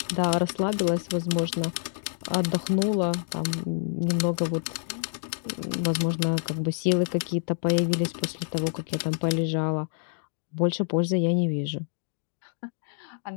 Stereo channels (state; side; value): silent; right; digital silence